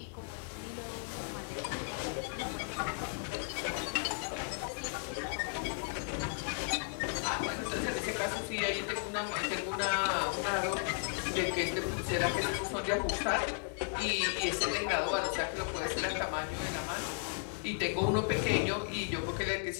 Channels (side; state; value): right; silent; 54 dB below the other